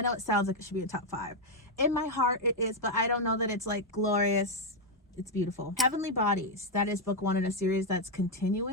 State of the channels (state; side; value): normal; both; correlation 0.02